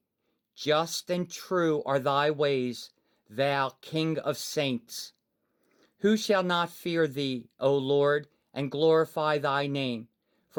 Just and true are thy ways, thou King of saints. Who shall not fear thee, O Lord, and glorify thy name?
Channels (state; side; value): identical; both; correlation 1.00